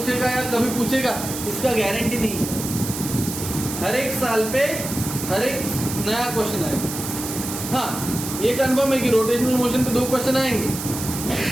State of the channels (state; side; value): noise; right; hiss, 7 dB below the sound